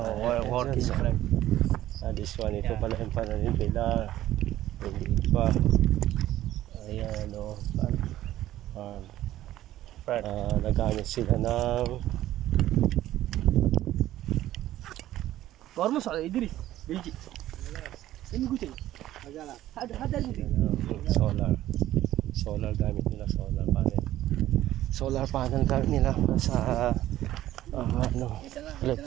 work is friend. This one, ito pala yung pananim nila. Hindi pa. Ayan, o. Nagamit sila ng Gormo sa Idris. Belgi. Ini gucil. Ada solar gamit nila, solar panel gamit nila sa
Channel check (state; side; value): quieter; left; 13.9 dB